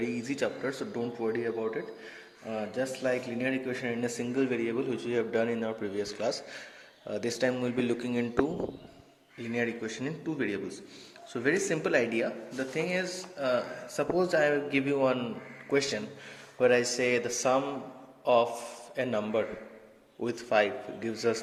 easy chapter, so don't worry about it. Just like linear equation in a single variable which we have done in our previous class, this time we'll be looking into linear equation in two variables. So very simple idea. The thing is, suppose I give you one question where I say the sum of a number with 5 gives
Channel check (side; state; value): both; identical; correlation 1.00